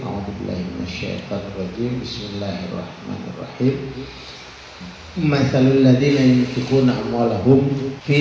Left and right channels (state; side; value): identical; both; correlation 1.00